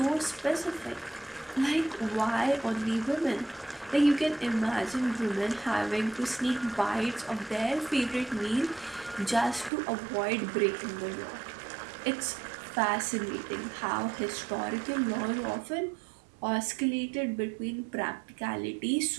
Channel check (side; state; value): left; drops out; at 9.7 s